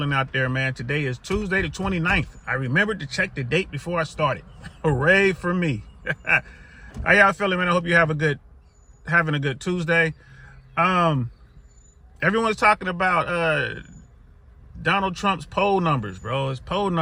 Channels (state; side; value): identical; both; correlation 1.00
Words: out there, man. Today is Tuesday the 29th. I remembered to check the date before I started. Hooray for me. How y'all feeling, man? I hope you have having a good Tuesday. Everyone's talking about Donald Trump's poll numbers, bro. His poll